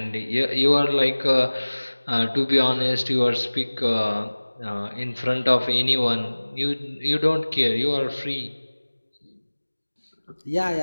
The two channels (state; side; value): inverted; both; correlation -1.00